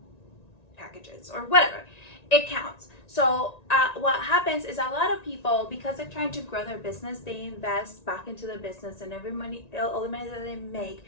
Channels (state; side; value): late; right; 1.9 ms